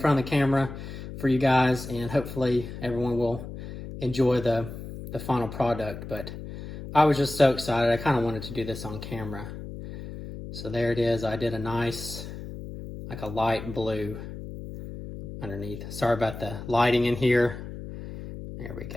of the camera for you guys, and hopefully everyone will enjoy the final product. But I was just so excited. I kind of wanted to do this on camera. So there it is. I did a nice, like a light blue underneath. Sorry about the lighting in here. There we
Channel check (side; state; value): left; noise; hum, 10 dB below the sound